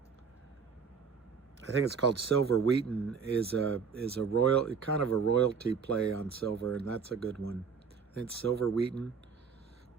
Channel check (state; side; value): quieter; left; 6.0 dB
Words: I think it's called Silver Wheaton, is a kind of a royalty play on silver, and that's a good one. I think it's Silver Wheaton,